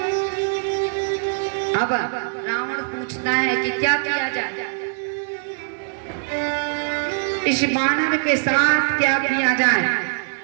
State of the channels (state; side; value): silent; left; digital silence